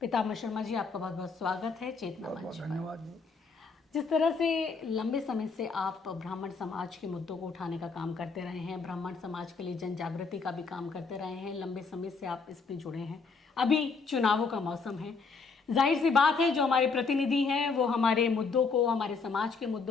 शर्मा जी, आपका बहुत बहुत स्वागत है चेतना मंच पर। धन्यवाद। जिस तरह से लंबे समय से आप ब्राह्मण समाज के मुद्दों को उठाने का काम करते रहे हैं, ब्राह्मण समाज के लिए जन जागृति का भी काम करते रहे हैं, लंबे समय से आप इसमें जुड़े हैं। अभी चुनावों का मौसम है, जाहिर सी बात है जो हमारे प्रतिनिधि हैं वो हमारे मुद्दों को, हमारे समाज के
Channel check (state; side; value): quieter; right; 4.7 dB